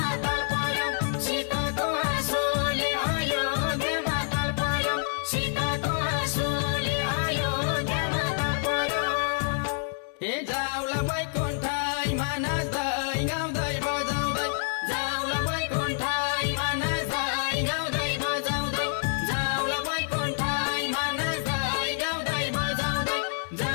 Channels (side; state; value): right; silent; 57 dB below the other